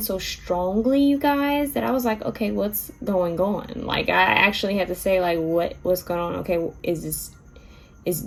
so strongly, you guys, that I was like, okay, what's going on? Like, I actually had to say, like, what's going on? Okay, is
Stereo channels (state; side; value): identical; both; correlation 1.00